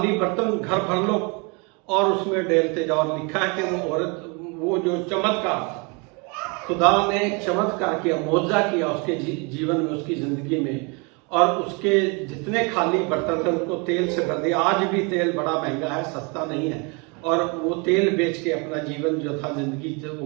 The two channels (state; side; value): quieter; left; 31.4 dB